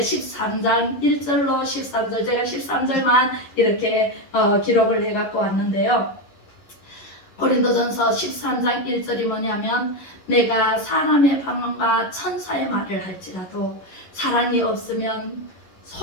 1절로 13절 제가 13절만 이렇게 기록을 해갖고 왔는데요. 고린도전서 13장 1절이 뭐냐면 내가 사람의 방언과 천사의 말을 할지라도 사랑이 없으면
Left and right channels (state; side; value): late; right; 11 ms